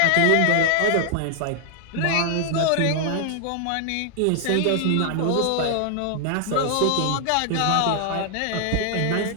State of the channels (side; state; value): both; different; correlation 0.00